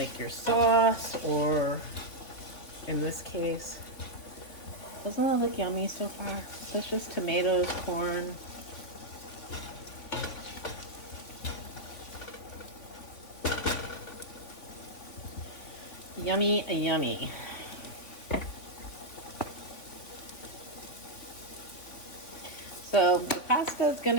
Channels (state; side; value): late; right; 3.5 ms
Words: your sauce, or in this case, doesn't that look yummy so far? So it's just tomatoes, corn. Yummy, yummy. So the pasta is going